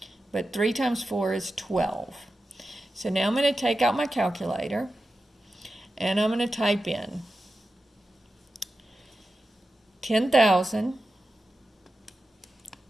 But 3 times 4 is 12. So now I'm going to take out my calculator, and I'm going to type in 10,000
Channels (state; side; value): normal; both; correlation 0.92